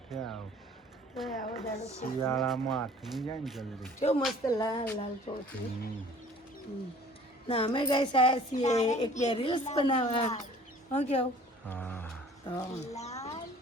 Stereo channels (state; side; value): normal; both; correlation 0.51